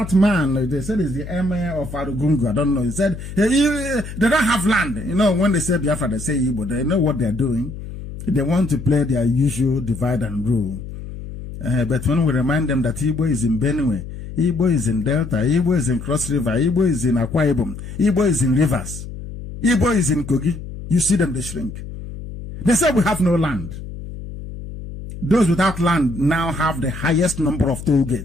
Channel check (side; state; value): left; noise; hum, 11 dB below the sound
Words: man? They said he's the emir of Arugungu. I don't know. He said they don't have land. You know, when they say Biafra, they say Igbo. They know what they're doing. They want to play their usual divide and rule. But when we remind them that Igbo is in Benue, Igbo is in Delta, Igbo is in Cross River, Igbo is in Akwa Ibom, Igbo is in Rivers, Igbo is in Kogi, you see them, they shrink. They say we have no land. Those without land now have the highest number of toll